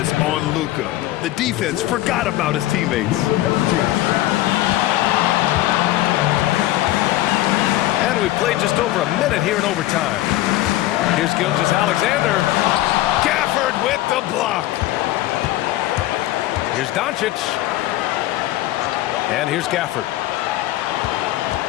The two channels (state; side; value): quieter; right; 15.6 dB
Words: on Luka. The defense forgot about his teammates. And we played just over a minute here in overtime. Here's Gilgeous-Alexander. Gafford with the block. Here's Doncic. And here's Gafford.